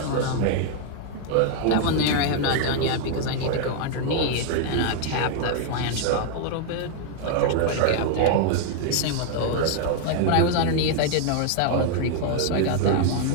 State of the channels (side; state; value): both; different; correlation 0.00